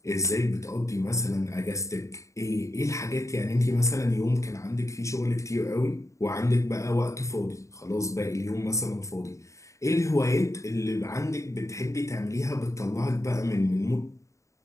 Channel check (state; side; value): late; right; 0.15 ms